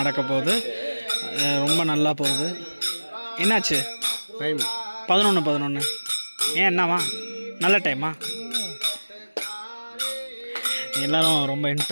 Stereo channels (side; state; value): both; inverted; correlation -1.00